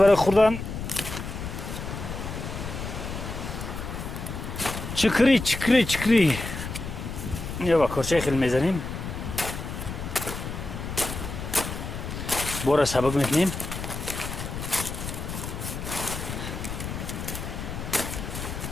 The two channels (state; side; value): noise; left; rumble, 6 dB below the sound